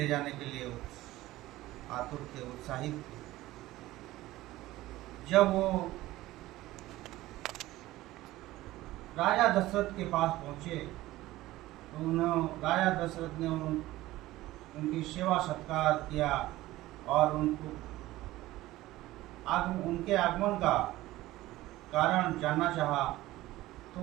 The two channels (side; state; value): left; quieter; 16.9 dB